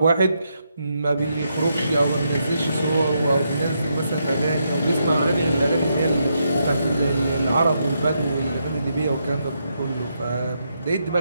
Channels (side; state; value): both; inverted; correlation -0.80